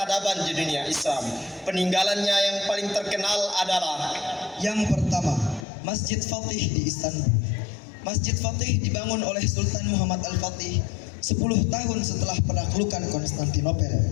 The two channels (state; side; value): drops out; right; at 5.7 s